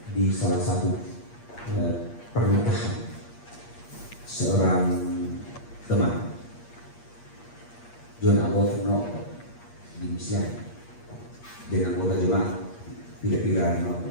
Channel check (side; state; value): right; late; 8.5 ms